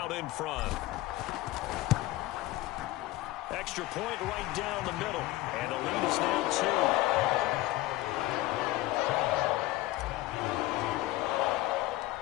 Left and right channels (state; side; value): quieter; right; 17.3 dB